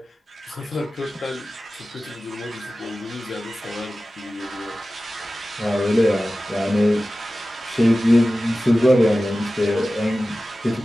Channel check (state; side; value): normal; both; correlation 0.95